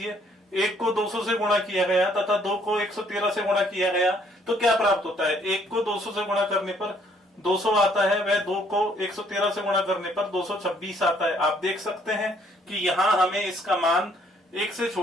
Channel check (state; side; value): normal; both; correlation 0.65